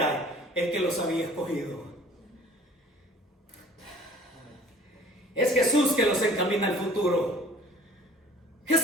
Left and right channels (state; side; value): normal; both; correlation 0.50